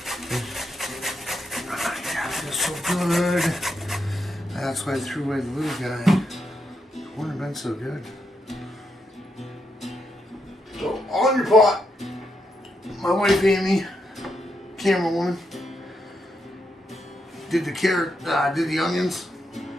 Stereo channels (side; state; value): both; normal; correlation 0.82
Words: Yeah, it's so good. That's why I threw away the little guy. It wouldn't have been so good. So on your pot, my wife Amy, camera woman, did the onions.